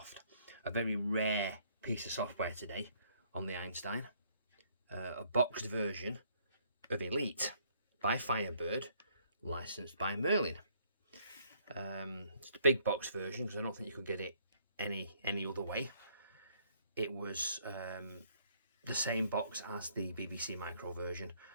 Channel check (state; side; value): inverted; both; correlation -0.65